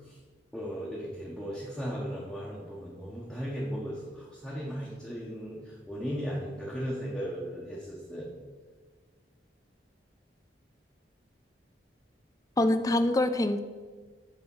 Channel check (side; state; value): both; normal; correlation 0.78